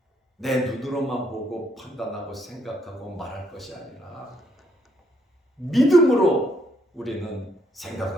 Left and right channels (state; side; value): normal; both; correlation 0.71